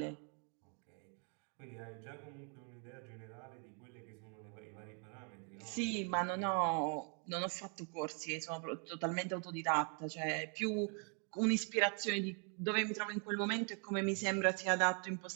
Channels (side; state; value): left; quieter; 40.0 dB